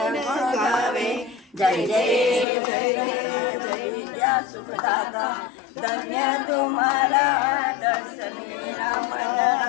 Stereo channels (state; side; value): drops out; right; at 2.5 s